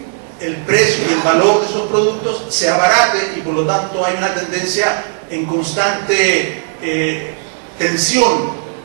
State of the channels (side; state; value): left; silent; digital silence